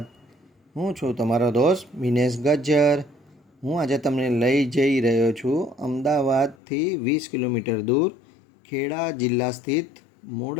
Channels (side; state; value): right; drops out; at 6.6 s